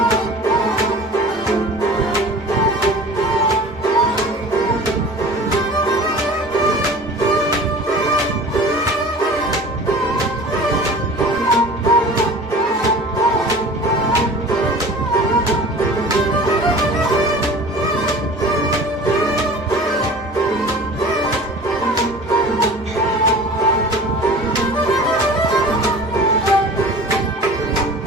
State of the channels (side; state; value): both; normal; correlation 0.41